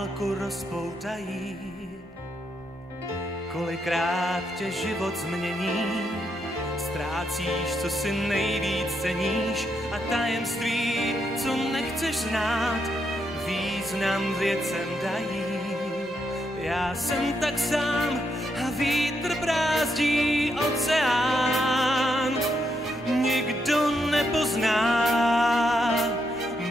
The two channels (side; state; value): both; normal; correlation 0.80